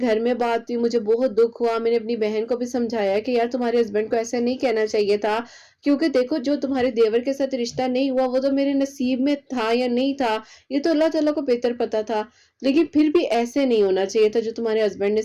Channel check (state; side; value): identical; both; correlation 1.00